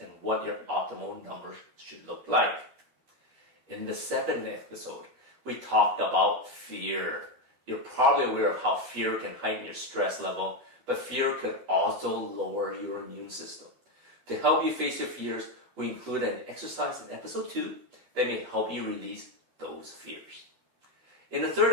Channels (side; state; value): left; late; 12 ms